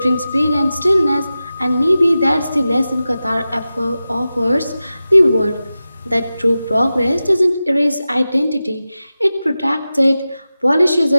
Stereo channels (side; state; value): both; inverted; correlation -0.94